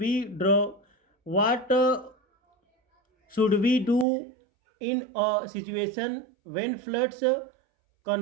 we do in a situation when floods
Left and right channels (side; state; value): left; drops out; at 4.0 s